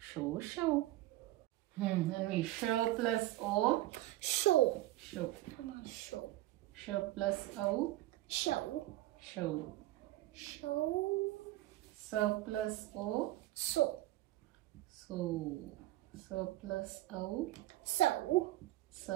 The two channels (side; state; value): left; quieter; 16.3 dB